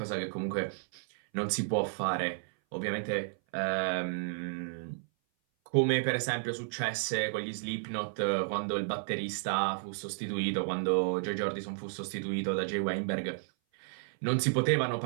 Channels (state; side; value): silent; left; 56 dB below the other